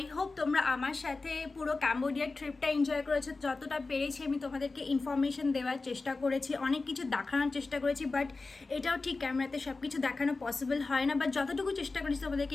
হোপ তোমরা আমার সাথে পুরো ক্যাম্বোডিয়ার ট্রিপটা এনজয় করেছো। যতটা পেরেছি আমি তোমাদেরকে ইনফরমেশন দেওয়ার চেষ্টা করেছি, অনেক কিছু দেখানোর চেষ্টা করেছি, বাট এটাও ঠিক ক্যামেরাতে সব কিছু দেখানো পসিবল হয় না, বাট যতটুকু চেষ্টা করেছি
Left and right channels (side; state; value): right; quieter; 3.7 dB